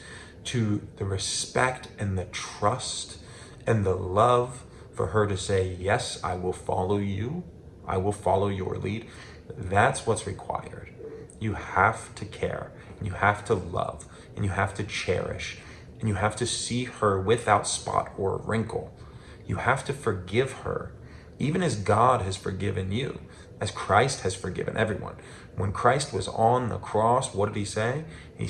to the respect and the trust and the love for her to say, yes, I will follow you, I will follow your lead, that's what's required. You have to care, and you have to love, and you have to cherish, and you have to see her without spot or wrinkle. You have to forgive her, even as God has forgiven you, as Christ has forgiven everyone. When Christ was on the cross, what did he say? He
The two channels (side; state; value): both; identical; correlation 1.00